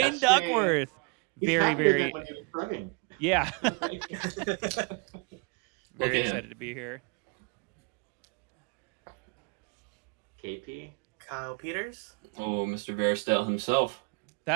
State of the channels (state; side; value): quieter; left; 32.8 dB